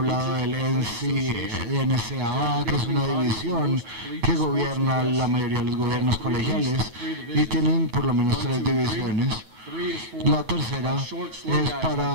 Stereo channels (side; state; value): left; late; 9.3 ms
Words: del NCAA, que es una división que gobierna la mayoría de los gobiernos colegiales y tienen por lo menos 3 divisiones. La tercera es